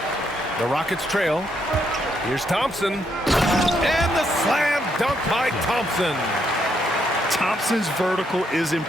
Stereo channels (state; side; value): normal; both; correlation 0.76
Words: The Rockets trail. Here's Thompson. And the slam dunk by Thompson. Thompson's vertical is